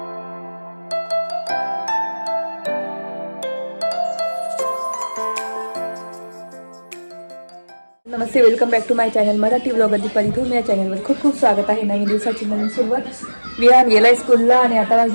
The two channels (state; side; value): inverted; both; correlation -1.00